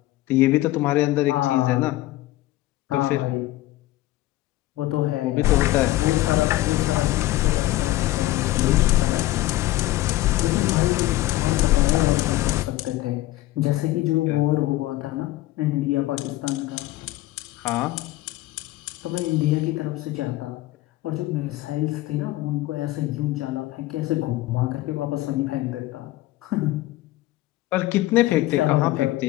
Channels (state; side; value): quieter; right; 16.9 dB